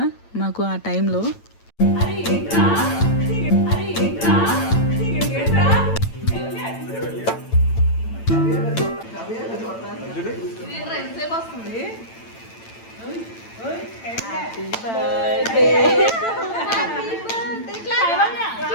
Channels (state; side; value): late; right; 8.9 ms